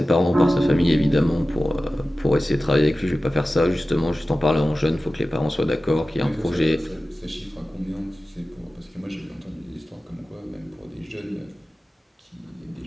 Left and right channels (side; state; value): both; normal; correlation 0.95